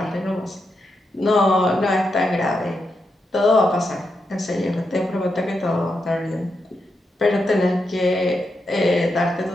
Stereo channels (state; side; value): normal; both; correlation 0.84